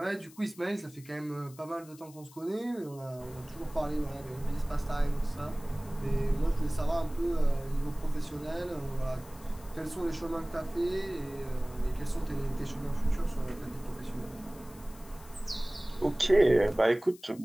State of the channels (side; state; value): left; noise; hiss, 22 dB below the sound